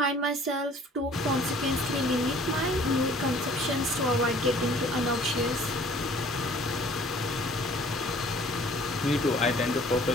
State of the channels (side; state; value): both; normal; correlation 0.53